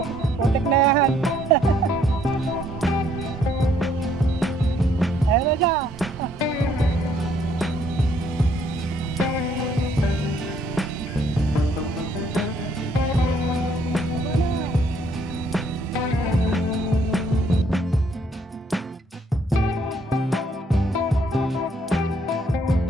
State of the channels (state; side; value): normal; both; correlation 0.67